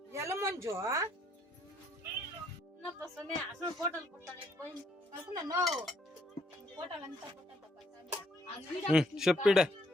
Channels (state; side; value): normal; both; correlation 0.69